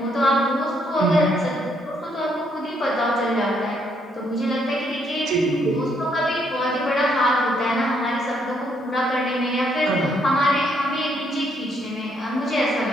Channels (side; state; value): both; normal; correlation 0.72